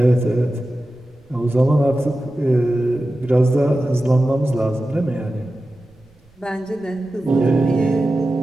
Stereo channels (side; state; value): right; noise; rumble, 30 dB below the sound